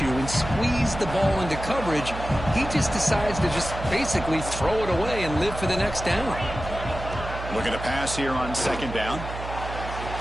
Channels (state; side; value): noise; right; hum, 8 dB below the sound